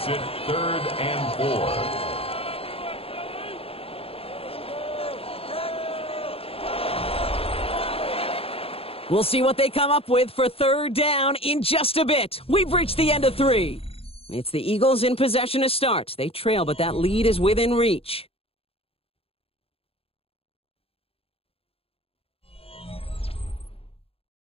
it 3rd and 4. We'll see what they come up with for 3rd down in just a bit. We've reached the end of 3. It's the Eagles in possession to start. They trail, but that lead is within reach.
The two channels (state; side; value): late; right; 0.27 ms